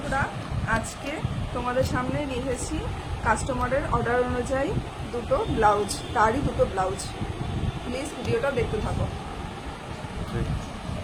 আজকে তোমাদের সামনে নিয়ে এসেছি কাস্টমারের অর্ডার অনুযায়ী দুটো ব্লাউজ, তারই দুটো ব্লাউজ। প্লিজ ভিডিওটা দেখতে থাকো।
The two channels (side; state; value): both; identical; correlation 1.00